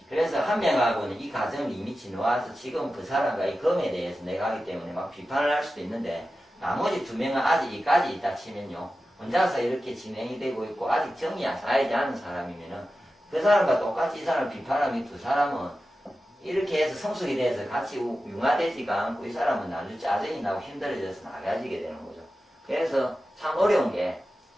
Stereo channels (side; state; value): both; normal; correlation 0.93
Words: 그래서 한 명하고는 이 과정을 이미 지나와서 지금 그 사람과 이 검에 대해서 내가 하기 때문에 막 비판을 할 수도 있는데 나머지 2명은 아직 이까지 있다 치면요. 혼자서 이렇게 진행이 되고 있고 아직 정이 안 쌓이지 않은 사람이면은 그 사람과 똑같이 이 사람을 비판하면 이 2사람은 이렇게 해서 성숙이 돼서 같이 융화되지가 않고 이 사람은 나중에 짜증이 나고 힘들어져서 나가지게 되는 거죠. 그래서 참 어려운 게